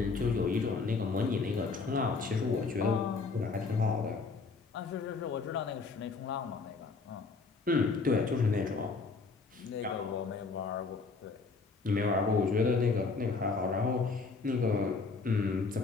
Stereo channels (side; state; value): right; quieter; 4.3 dB